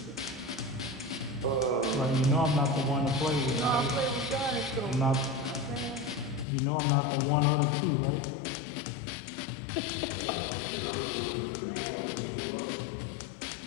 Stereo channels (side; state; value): right; drops out; at 6.5 s